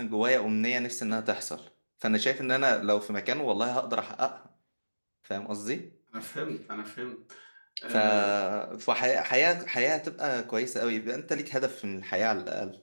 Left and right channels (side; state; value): both; inverted; correlation -1.00